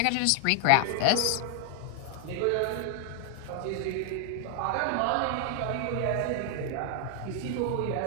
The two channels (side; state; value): both; different; correlation 0.00